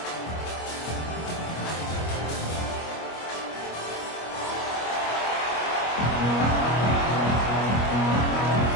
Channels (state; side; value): late; right; 25 ms